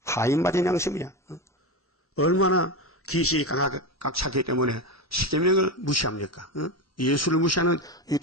하인맞은 양심이야. 얼마나 기시가 각차기 때문에 십계명을 무시합니까? 예수를 무시하는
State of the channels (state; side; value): normal; both; correlation 0.18